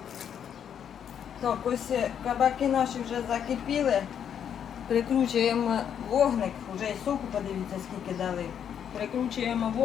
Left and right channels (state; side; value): quieter; right; 8.6 dB